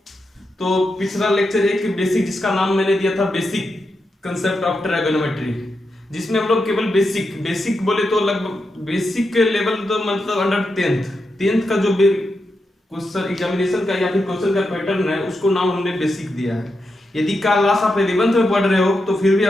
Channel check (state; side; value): normal; both; correlation 0.86